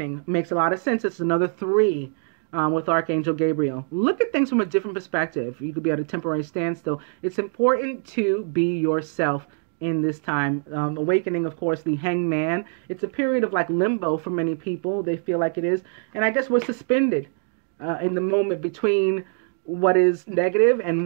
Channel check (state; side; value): silent; left; 55 dB below the other